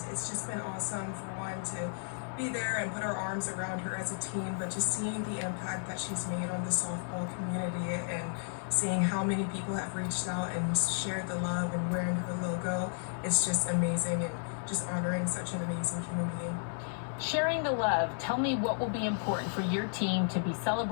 it's just been awesome for one to be there and put our arms around her as a team, but just seeing the impact that she's made on the softball community and seeing how many people have reached out and shared the love and wearing her logo, it's just amazing, and just honoring such an amazing human being. Sharing the love, tell me what will be important for your team to be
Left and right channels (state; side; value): silent; right; digital silence